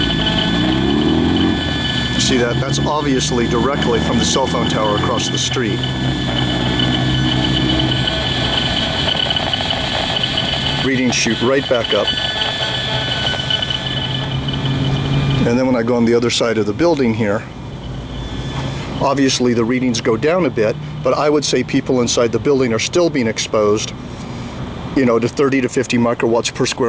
See that? That's obviously directly from the cell phone tower across the street. Readings shoot right back up. And then when I go on the other side of the building here, obviously the readings go down a bit, but I would say people inside the building are still being exposed, to 30 to 50 microwatts per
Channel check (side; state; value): both; identical; correlation 1.00